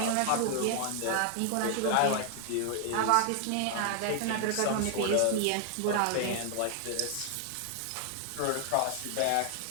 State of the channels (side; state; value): both; different; correlation 0.00